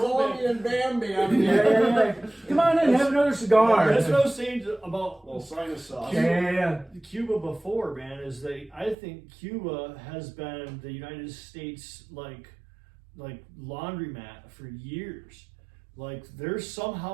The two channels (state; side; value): drops out; left; at 9.0 s